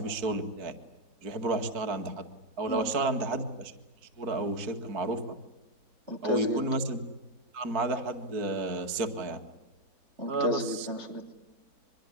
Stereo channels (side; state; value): left; late; 4.5 ms